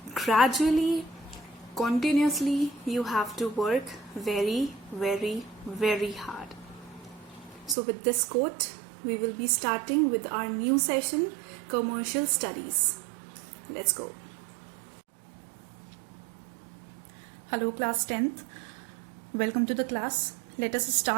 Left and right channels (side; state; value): left; drops out; at 7.8 s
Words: gradually, continuously, you have to work very, very, very hard. So with this quote, we will be starting with our new session, Commercial Studies. Let's go. Hello class 10th. Welcome to the class. Let us